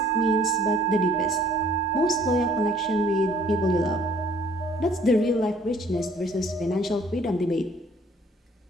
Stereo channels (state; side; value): normal; both; correlation 0.58